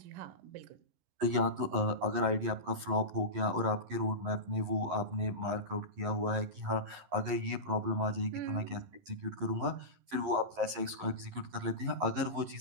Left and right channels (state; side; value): late; left; 11 ms